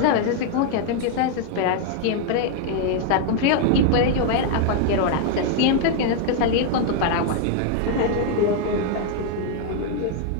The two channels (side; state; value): both; different; correlation 0.00